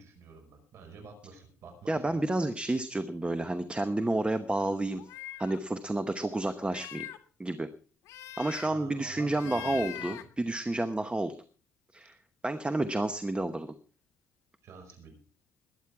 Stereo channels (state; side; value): normal; both; correlation 0.91